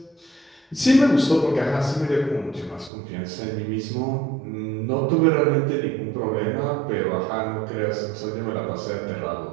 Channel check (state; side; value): drops out; left; at 2.9 s